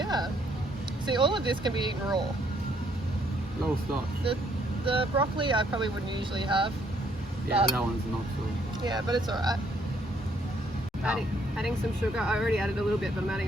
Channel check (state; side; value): normal; both; correlation 0.68